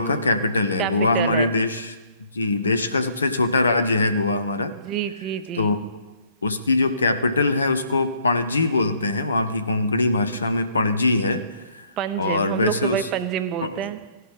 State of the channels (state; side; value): inverted; both; correlation -0.63